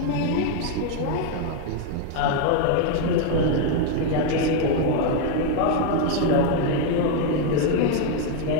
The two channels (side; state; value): both; different; correlation 0.01